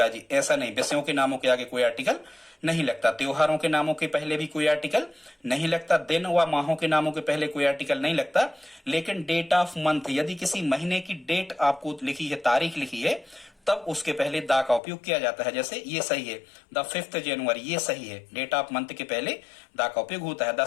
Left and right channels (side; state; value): right; drops out; at 14.8 s